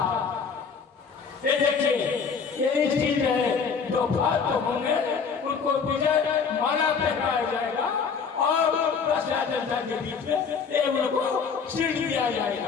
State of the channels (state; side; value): quieter; right; 5.9 dB